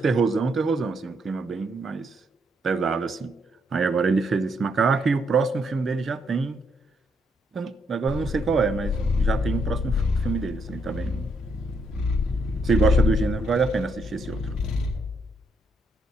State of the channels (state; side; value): normal; both; correlation 0.76